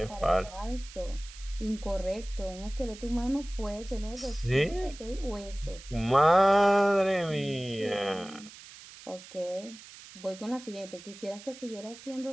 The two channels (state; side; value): noise; right; hiss, 17 dB below the sound